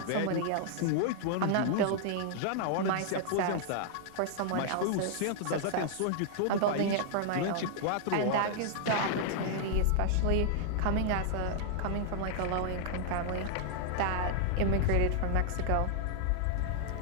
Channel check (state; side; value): different; both; correlation -0.01